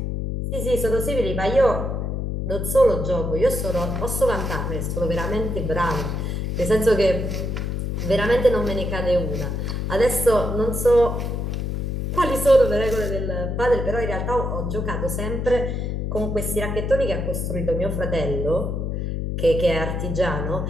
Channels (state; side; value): noise; left; hum, 2 dB below the sound